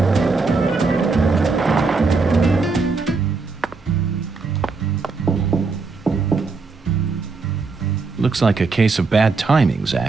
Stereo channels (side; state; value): left; quieter; 4.2 dB